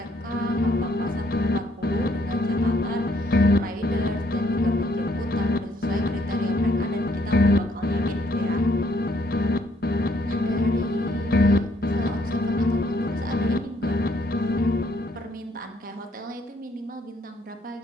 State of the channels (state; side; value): normal; both; correlation 0.68